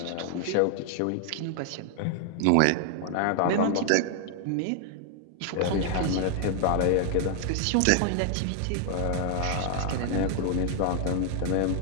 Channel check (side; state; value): both; different; correlation 0.00